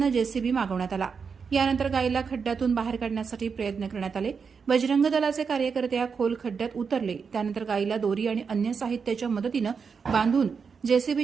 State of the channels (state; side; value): quieter; left; 5.8 dB